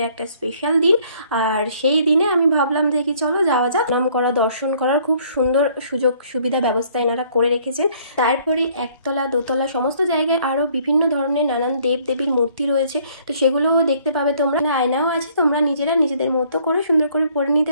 একটা স্পেশাল দিন, আর সেই দিনে আমি ভাবলাম যে কি চলো যাওয়া যাক। নাম করা, দর্শন করার খুব সুন্দর সুযোগ সুবিধা ব্যবস্থা এনারা করে রেখেছেন। তারপরে একতলা দোতলা সমস্ত জায়গায় আরও বিভিন্ন ধরনের নানান দেব দেবীর মূর্তি রয়েছে, তো সেগুলোও দেখতে পাবে তোমরা। আয়নাও আছে, তোমরা নিজেরা নিজেদের মতো করে সুন্দর করে পরে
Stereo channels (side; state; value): both; inverted; correlation -0.61